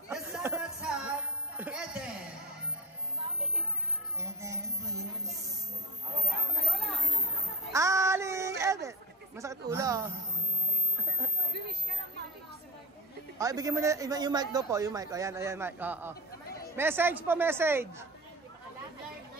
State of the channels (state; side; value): normal; both; correlation 0.25